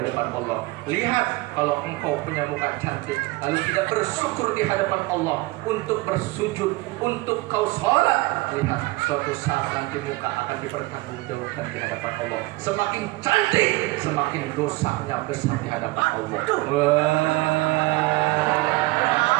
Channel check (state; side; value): quieter; left; 21.8 dB